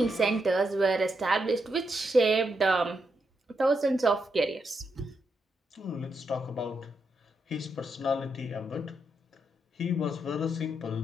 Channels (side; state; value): both; normal; correlation 0.82